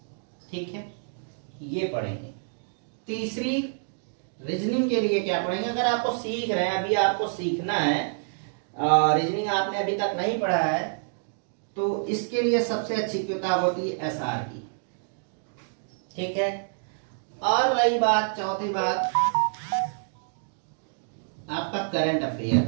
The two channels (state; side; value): silent; left; digital silence